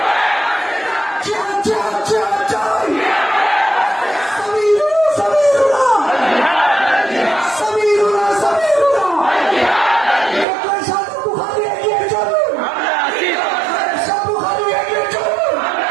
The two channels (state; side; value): drops out; left; at 10.5 s